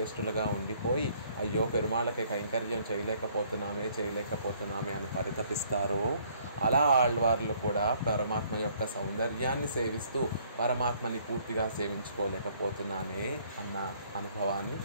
ఉండిపోయి అయ్యో పెరుమాళ్ళకి కైంకర్యం చేయలేకపోతున్నామే అని పరితపిస్తారో అలా ఆళ్వార్లు కూడా పరమాత్మ యొక్క సౌందర్యాన్ని సేవిస్తూ పరమాత్మని పూర్తిగా సేవించుకోలేకపోతున్నానే అన్న అనుభవాన్ని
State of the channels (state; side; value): inverted; both; correlation -0.63